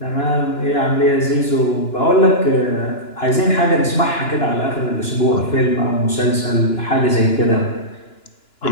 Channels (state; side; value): late; right; 2.9 ms